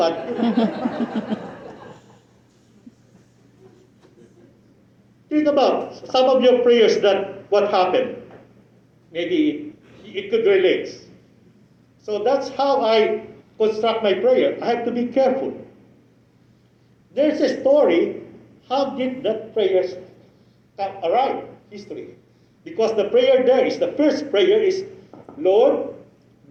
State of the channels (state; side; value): identical; both; correlation 1.00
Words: Think about some of your prayers that what happened. Maybe it could relate. So that's how I construct my prayer. I have to be careful. There's a story. How did that prayer arrive? History. Because the prayer there is, the first prayer is, Lord,